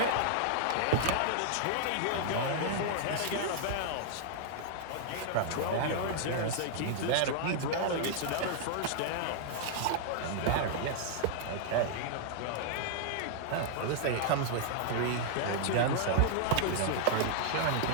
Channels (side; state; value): both; different; correlation -0.01